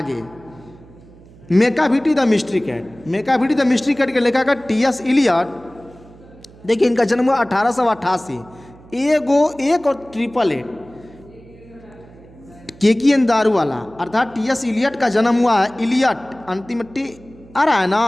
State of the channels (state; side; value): noise; right; hum, 23 dB below the sound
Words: Macavity the mystery cat. Macavity the mystery cat के लेखक है टी.एस. इलियट। देखिए, इनका जन्म हुआ 1888। एक और 888 केकियन दारू वाला, अर्थात टी.एस. इलियट का जन्म हुआ है। इलियट अंतिम टी आ रहा है